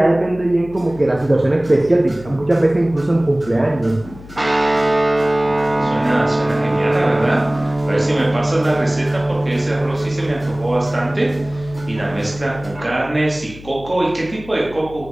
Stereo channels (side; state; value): left; noise; hum, 18 dB below the sound